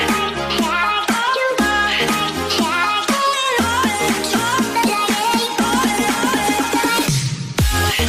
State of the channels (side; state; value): both; identical; correlation 1.00